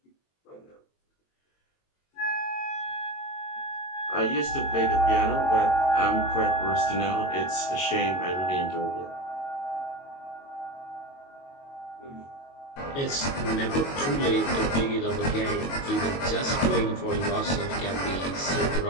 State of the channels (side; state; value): right; late; 22 ms